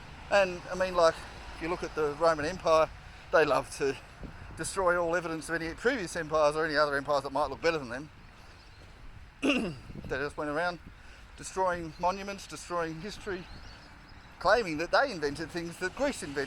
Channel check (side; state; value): both; identical; correlation 1.00